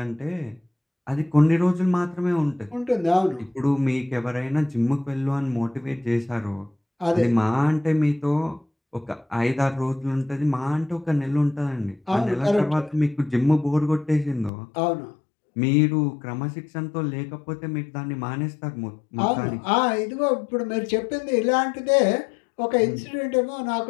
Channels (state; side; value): drops out; right; at 14.5 s